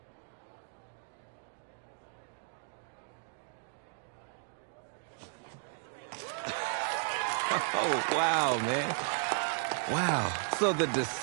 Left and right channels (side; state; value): left; silent; digital silence